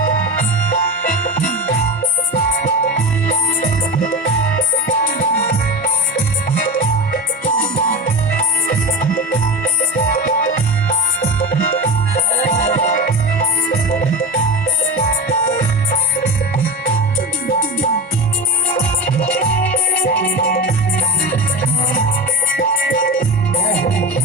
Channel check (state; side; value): normal; both; correlation 0.25